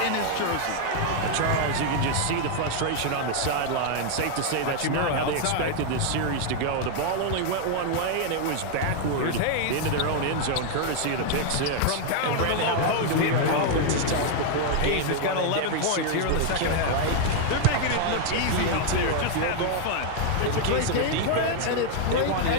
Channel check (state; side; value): different; both; correlation 0.00